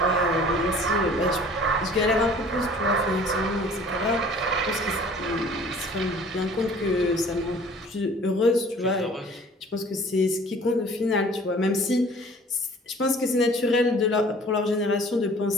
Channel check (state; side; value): normal; both; correlation 0.50